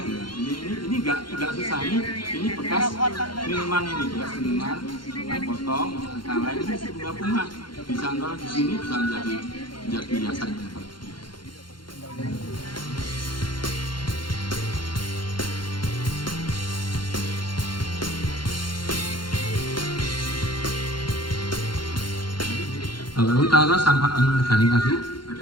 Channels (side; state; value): right; late; 0.72 ms